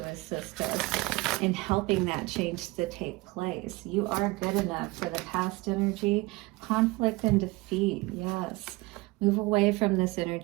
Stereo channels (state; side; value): quieter; left; 22.9 dB